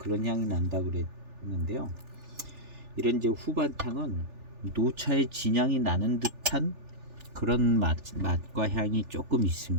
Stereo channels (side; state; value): left; late; 3.4 ms